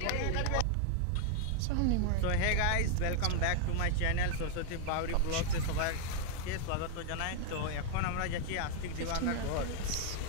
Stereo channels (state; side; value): different; both; correlation 0.00